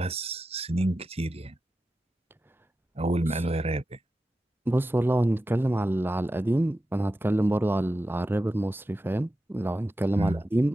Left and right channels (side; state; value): both; normal; correlation 0.92